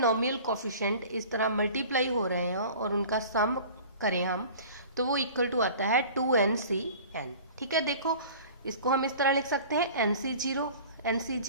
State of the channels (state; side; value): inverted; both; correlation -0.43